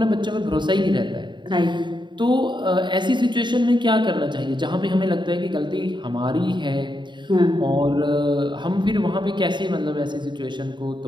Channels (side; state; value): left; late; 0.22 ms